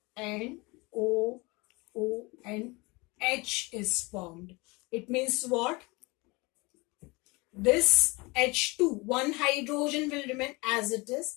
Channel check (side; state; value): right; quieter; 25.5 dB